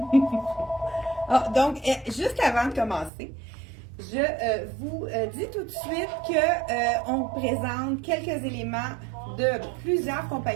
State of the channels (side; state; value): left; drops out; at 3.1 s